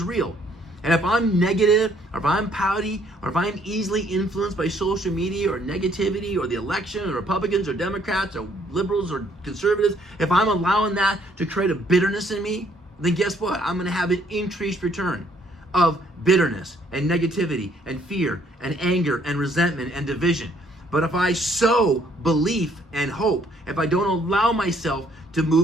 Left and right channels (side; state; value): both; normal; correlation 0.65